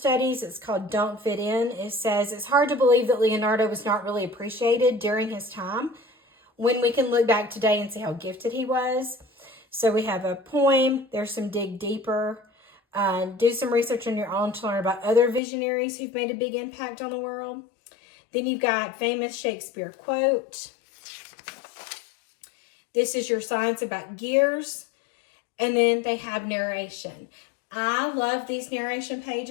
It's called Don't Fit In. It says, it's hard to believe that Leonardo was not really appreciated during his time when we can look back today and see how gifted he was. So we have a poem. There's some dig deeper. Do some research on your own to learn about other visionaries who've made a big impact on the world. Then you've got famous Shakespeare quote. This is your science about gears. And then they have narration. I love these narration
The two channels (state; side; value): drops out; right; at 15.4 s